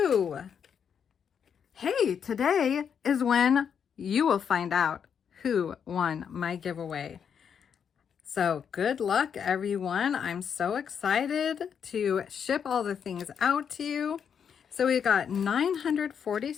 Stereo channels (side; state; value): right; quieter; 7.5 dB